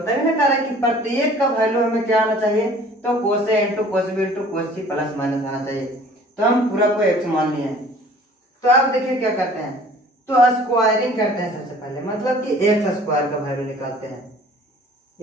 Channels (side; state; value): both; normal; correlation 0.50